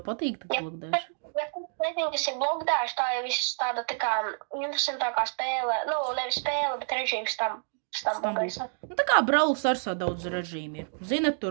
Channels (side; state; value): left; silent; digital silence